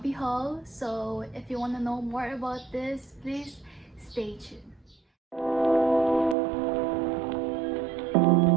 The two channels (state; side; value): drops out; left; at 6.4 s